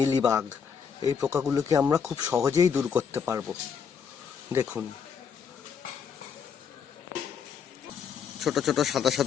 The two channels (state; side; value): quieter; right; 6.8 dB